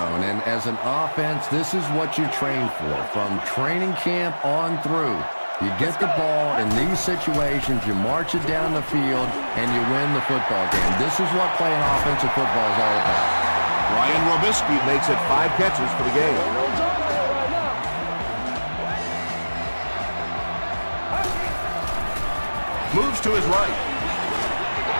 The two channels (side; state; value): both; inverted; correlation -1.00